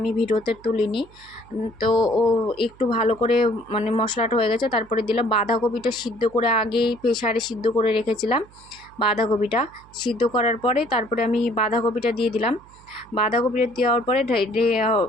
ভিডিওতে তুলিনি। তো ও একটু ভালো করে মশলাটা হয়ে গেছে। তারপরে দিলাম বাঁধাকপিটা, সিদ্ধ করে আগেই প্রেসারে সিদ্ধ করে রেখেছিলাম। বাঁধাকপিটা সিদ্ধ করার পরে তারপরে আমি বাঁধাকপিটা দিয়ে দিলাম। বাঁধাকপিটা দেওয়ার পরে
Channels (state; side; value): noise; right; hum, 25 dB below the sound